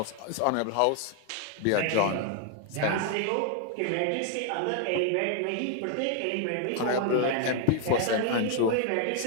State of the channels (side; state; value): both; different; correlation 0.00